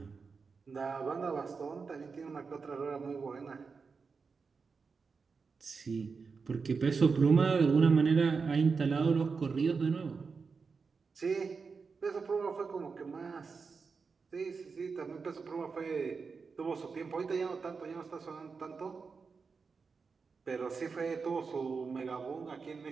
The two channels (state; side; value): quieter; left; 5.0 dB